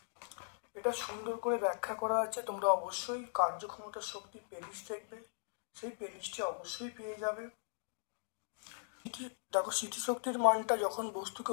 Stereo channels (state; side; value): silent; right; digital silence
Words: এটা সুন্দর করে ব্যাখ্যা করা আছে, তোমরা অবশ্যই কার্যক্ষমতার শক্তি প্লেলিস্ট দেখবে, সেই প্লেলিস্টে অবশ্যই পেয়ে যাবে। দেখো, স্থিতিশক্তির মানটা যখন বস্তুকে